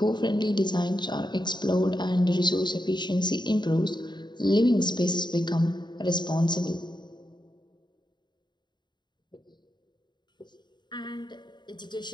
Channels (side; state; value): right; late; 0.21 ms